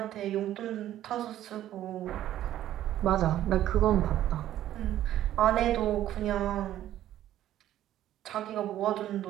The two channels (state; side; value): quieter; left; 12.5 dB